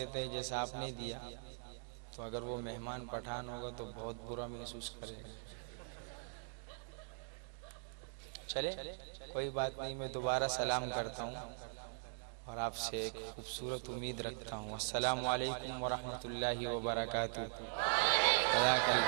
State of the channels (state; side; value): silent; left; digital silence